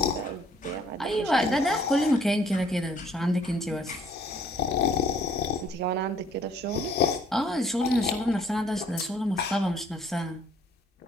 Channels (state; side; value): normal; both; correlation 0.61